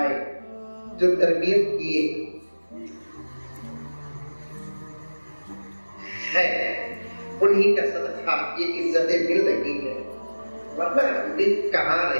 جو تربیت کیے ہے، انہی کا صدقہ یہ عزتیں مل رہی ہیں، ورنہ ہم بھی کہاں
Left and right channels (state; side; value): inverted; both; correlation -1.00